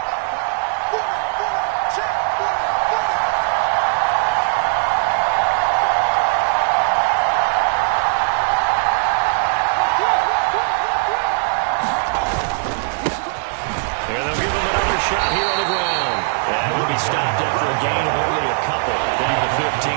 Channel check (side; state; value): left; silent; 65 dB below the other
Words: And they'll give him another shot here on the ground. And will be stopped after a gain of only a couple down the